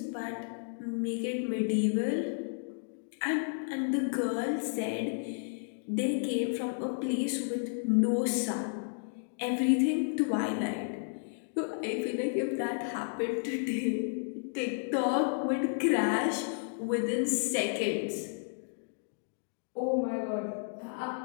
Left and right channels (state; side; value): silent; right; digital silence